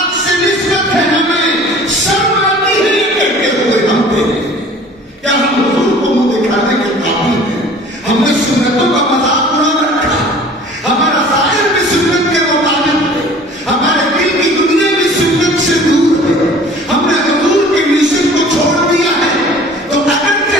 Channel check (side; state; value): both; normal; correlation 0.47